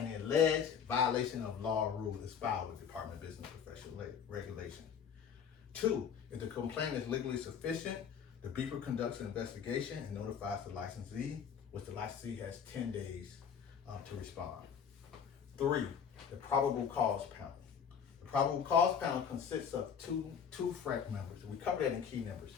alleged violation of law or rule is filed with the Department of Business and Professional Regulation. 2, if the complaint is legally sufficient, the BROKER conducts an investigation and notifies the licensee, which the licensee has 10 days to respond. 3, the probable cause panel. The probable cause panel consists of two FREC members. We cover that in key numbers.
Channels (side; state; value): right; quieter; 7.4 dB